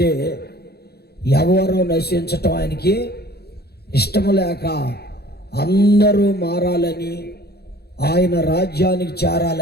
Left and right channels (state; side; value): late; right; 0.47 ms